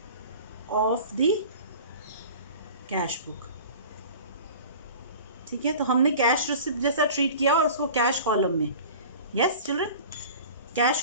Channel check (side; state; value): both; inverted; correlation -0.40